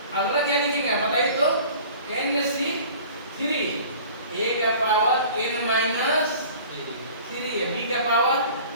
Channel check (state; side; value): inverted; both; correlation -0.45